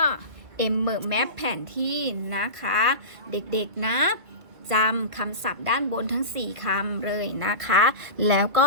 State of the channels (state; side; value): late; left; 2.1 ms